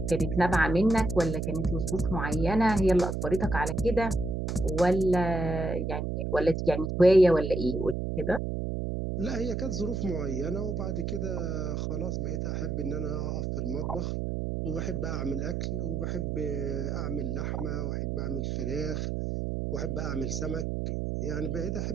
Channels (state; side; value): noise; right; hum, 2 dB below the sound